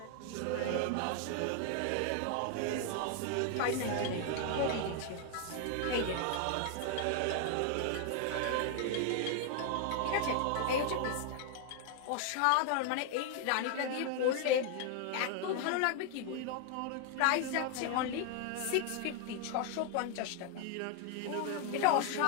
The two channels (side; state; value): both; different; correlation 0.00